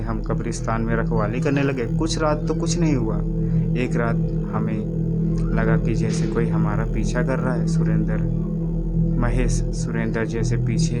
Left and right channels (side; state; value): both; identical; correlation 1.00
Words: हम कब्रिस्तान में रखवाली करने लगे। कुछ रात तो कुछ नहीं हुआ, एक रात हमें लगा कि जैसे कोई हमारा पीछा कर रहा है। सुरेंद्र, महेश, सुरेंद्र, जैसे पीछे